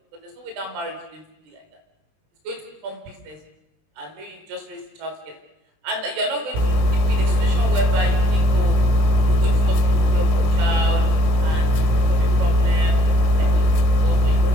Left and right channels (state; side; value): late; left; 19 ms